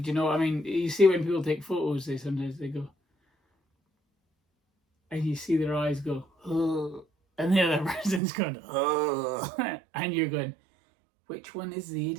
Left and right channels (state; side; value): drops out; left; at 8.2 s